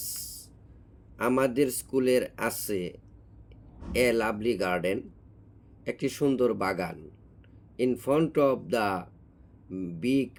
আমাদের স্কুলের আছে এ লাভলি গার্ডেন, একটি সুন্দর বাগান, in front of the big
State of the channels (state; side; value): identical; both; correlation 1.00